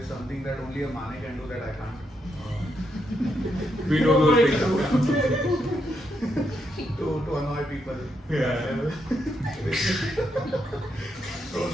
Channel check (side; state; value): both; normal; correlation 0.79